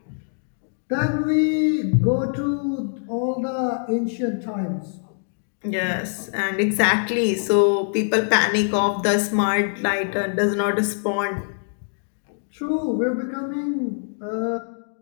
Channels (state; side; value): silent; right; 63 dB below the other